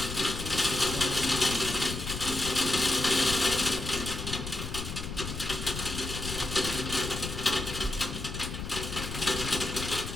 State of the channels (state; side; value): noise; left; rumble, 7 dB below the sound